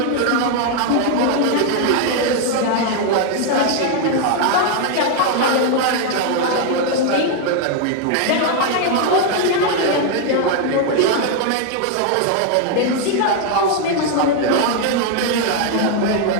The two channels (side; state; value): both; different; correlation 0.01